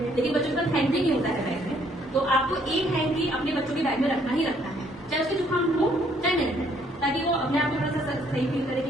लेकिन बच्चों के पास हैंकी नहीं होता है बैग में, तो आपको एक हैंकी अपने बच्चों के बैग में रखना ही रखना है, चाहे उसके जुकाम हो चाहे नहीं, ताकि वो अपने आप को थोड़ा सा सही फील करे कि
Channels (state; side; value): normal; both; correlation 0.65